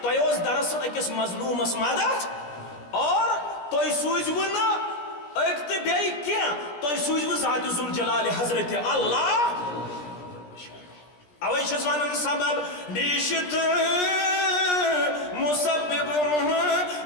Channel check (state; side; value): late; right; 17 ms